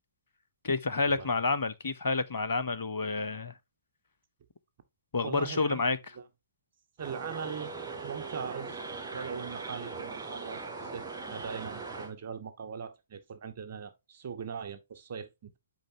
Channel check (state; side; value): inverted; both; correlation -0.64